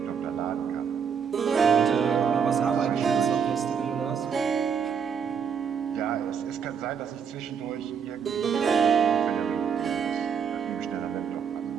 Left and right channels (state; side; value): quieter; left; 7.0 dB